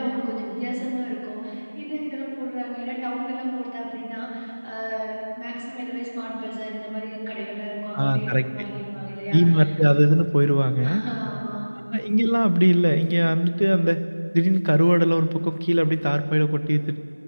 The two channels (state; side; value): inverted; both; correlation -1.00